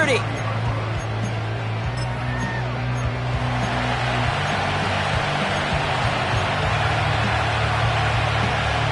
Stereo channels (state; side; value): identical; both; correlation 1.00